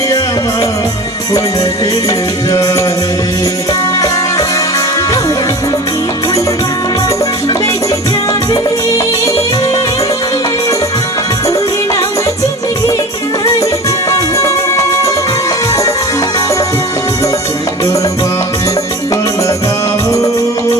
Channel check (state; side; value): normal; both; correlation 0.36